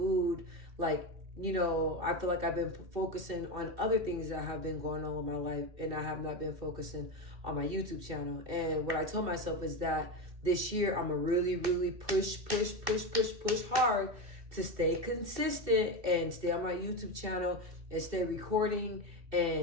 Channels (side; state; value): left; late; 2.6 ms